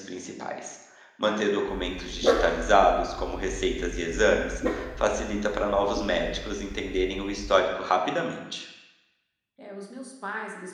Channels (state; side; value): identical; both; correlation 1.00